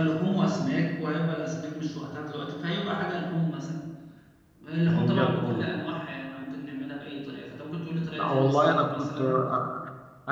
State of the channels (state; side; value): identical; both; correlation 1.00